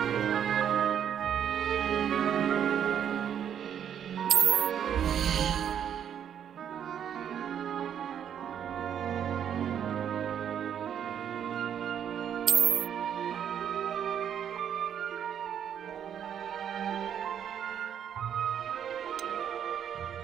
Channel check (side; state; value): left; quieter; 9.0 dB